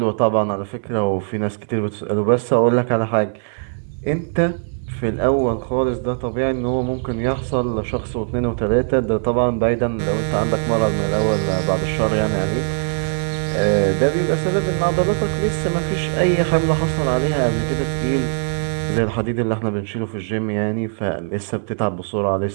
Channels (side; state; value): left; silent; digital silence